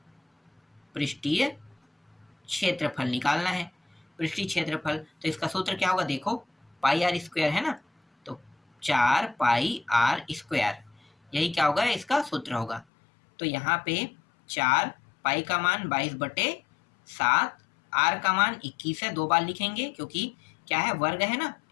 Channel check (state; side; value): drops out; right; at 12.9 s